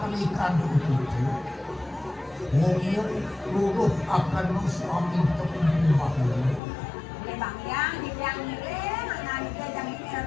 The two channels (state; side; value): drops out; right; at 6.6 s